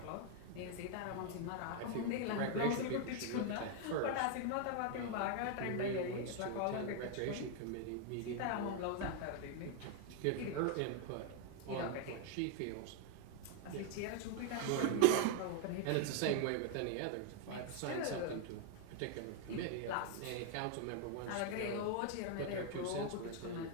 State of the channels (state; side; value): different; both; correlation 0.00